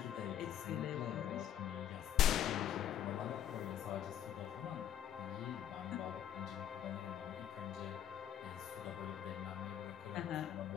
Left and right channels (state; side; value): quieter; right; 10.4 dB